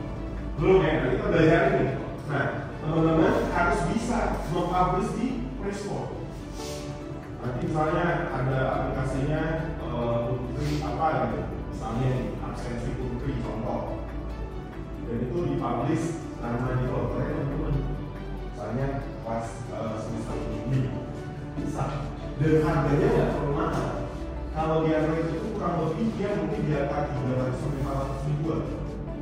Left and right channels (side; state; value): both; identical; correlation 1.00